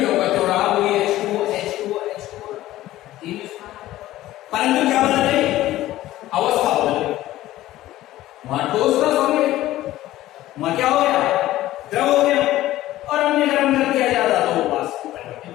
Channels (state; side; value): quieter; right; 15.2 dB